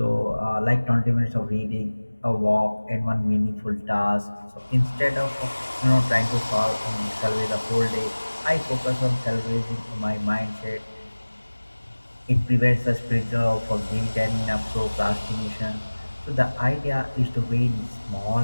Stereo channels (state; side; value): inverted; both; correlation -1.00